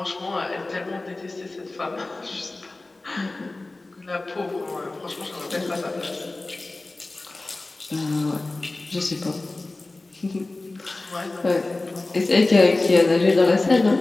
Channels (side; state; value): right; quieter; 3.1 dB